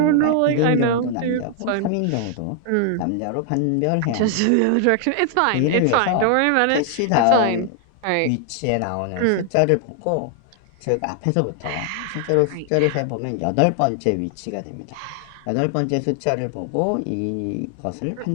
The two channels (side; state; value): both; different; correlation 0.00